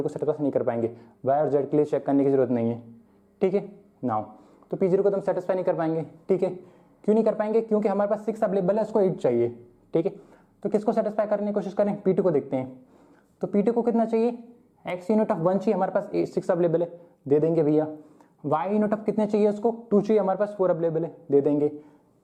को सेटिस्फाई नहीं कर पाएंगे, y और z के लिए चेक करने की जरूरत नहीं है, ठीक है। नाउ तो P0 को तो हम सेटिस्फाई नहीं कर पाएंगे, ठीक है। क्यों नहीं कर पाएंगे, क्योंकि हमारे पास 6 अवेलेबल है, उसको 8 चाहिए, ठीक है। तो किसको सेटिस्फाई करने की कोशिश करें, P2 को देखते हैं। तो P2 को कितना चाहिए x यूनिट ऑफ 1 चाहिए, हमारे पास 6 अवेलेबल है, दे देंगे भैया। y यूनिट ऑफ कितने चाहिए उसको 2 चाहिए, हमारे पास 4 अवेलेबल है, दे देंगे।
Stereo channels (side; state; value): both; identical; correlation 1.00